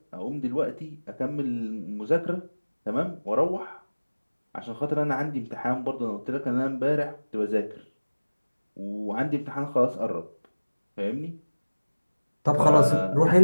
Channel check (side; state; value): both; inverted; correlation -1.00